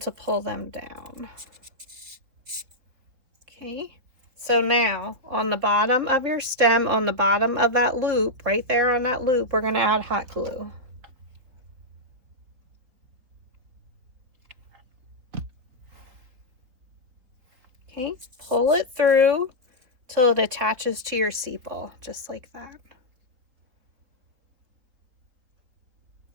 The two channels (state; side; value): late; left; 4.0 ms